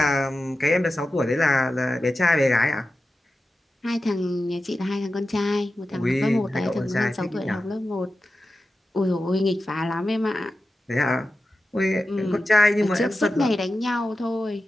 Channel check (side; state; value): both; normal; correlation 0.93